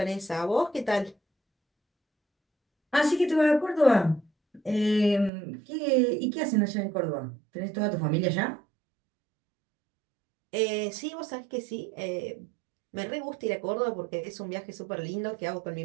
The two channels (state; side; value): drops out; left; at 5.3 s